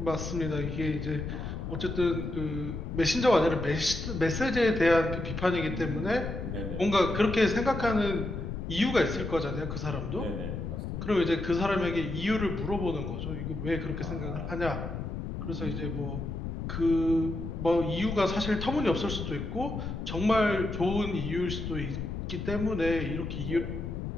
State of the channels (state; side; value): noise; left; rumble, 5 dB below the sound